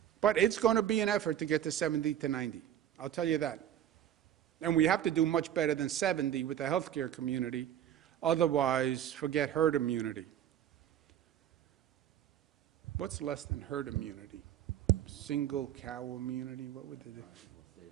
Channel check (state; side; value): quieter; left; 10.6 dB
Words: But it's going to be an effort to get to 70 to 90. I'll tell you that. And we have to do much better than 70 with the healthcare community. Otherwise, forget herd immunity. What's less than herd immunity? Single cow immunity? What would